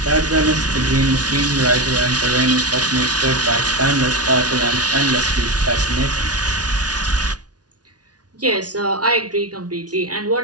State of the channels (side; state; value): left; late; 0.69 ms